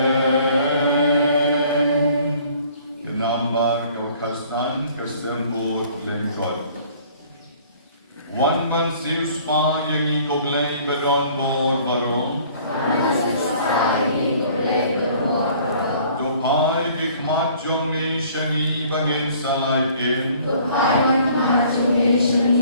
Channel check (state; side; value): inverted; both; correlation -0.55